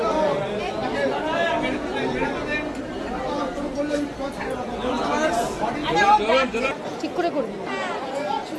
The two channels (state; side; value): identical; both; correlation 1.00